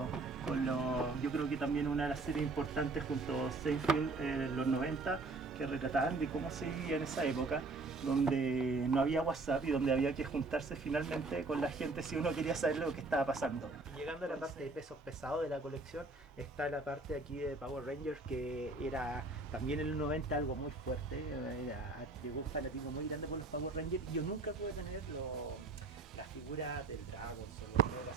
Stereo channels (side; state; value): left; quieter; 3.4 dB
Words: creo que también una de las series importantes junto a Seinfeld en los 90, que retrataban de cómo se vivía en esa época, donde no había WhatsApp y donde había que juntarse finalmente con la gente si uno quería saber lo que estaba pasando. Llegando a la parte de pesos pesados de la colección, está la parte aquí de Power Rangers, que era también en los 90 algo muy fuerte. Llegó un fanatismo muy grande por los Power Rangers, y yo nunca pude tener las figuras del Dragon o el